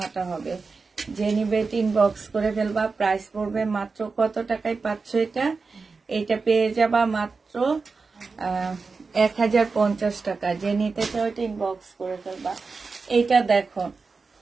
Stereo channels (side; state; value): left; quieter; 4.4 dB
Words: হবে। যে নিবে ইনবক্স করে ফেলবা। প্রাইস পড়বে মাত্র কত টাকায় পাচ্ছ এটা? এটা পেয়ে যাবা মাত্র 1050 টাকা। যে নিতে চাও এটা ইনবক্স করে ফেলবা। এইটা দেখো,